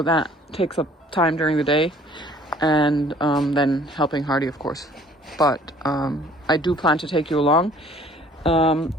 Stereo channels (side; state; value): both; normal; correlation 0.55